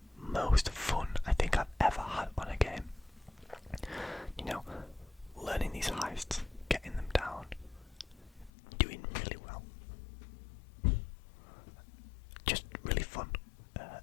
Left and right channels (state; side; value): drops out; right; at 8.5 s